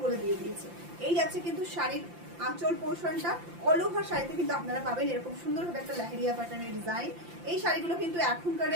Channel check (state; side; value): late; left; 5.8 ms